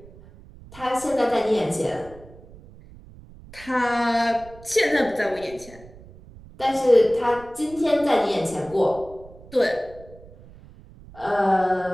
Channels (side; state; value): right; noise; rumble, 20 dB below the sound